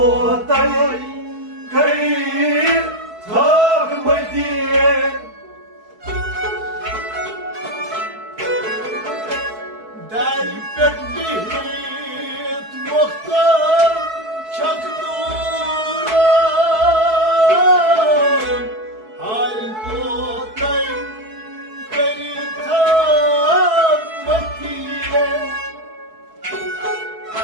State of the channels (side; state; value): left; late; 4.6 ms